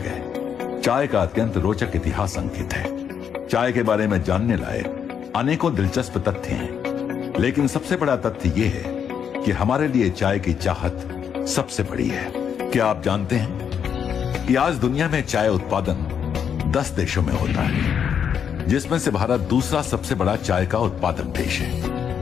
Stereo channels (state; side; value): quieter; right; 7.8 dB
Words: चाय का अत्यंत रोचक इतिहास अंकित है। चाय के बारे में जानने लायक अनेकों दिलचस्प तथ्य हैं, लेकिन सबसे बड़ा तथ्य यह है कि हमारे लिए चाय की चाहत सबसे बड़ी है। क्या आप जानते हैं कि आज दुनिया में चाय उत्पादन 10 देशों में होता है, जिसमें से भारत दूसरा सबसे बड़ा चाय का उत्पादक देश